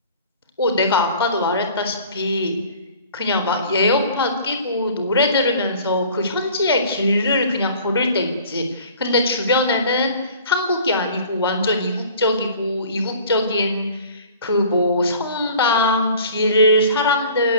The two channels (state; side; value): inverted; both; correlation -0.48